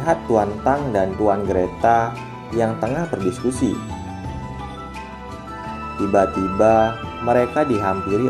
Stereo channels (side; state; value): both; identical; correlation 1.00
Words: Tuan Tang dan Tuan Greta yang tengah berdiskusi. Tiba-tiba, mereka dihampiri